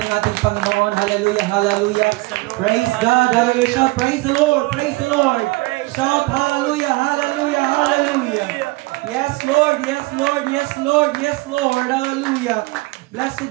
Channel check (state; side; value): quieter; left; 22.9 dB